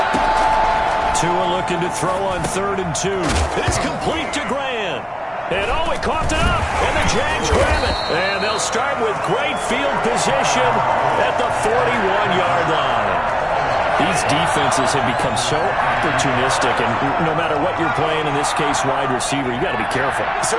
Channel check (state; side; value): identical; both; correlation 1.00